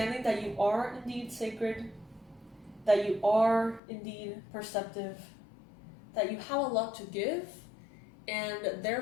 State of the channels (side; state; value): right; drops out; at 3.8 s